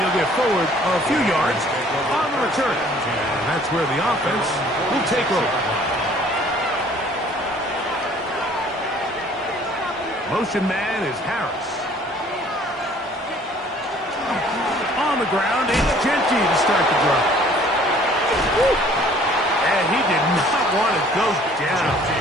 get forward a few yards on the return. And that's where the offense will take over. Motion man is Harris. On the ground, it's Genty to start the drive. And he did not want to go down.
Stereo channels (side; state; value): both; normal; correlation 0.55